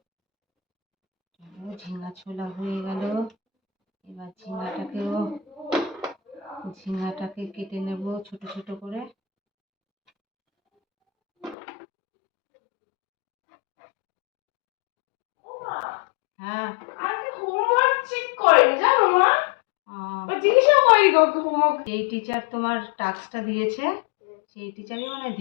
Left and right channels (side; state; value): right; drops out; at 11.6 s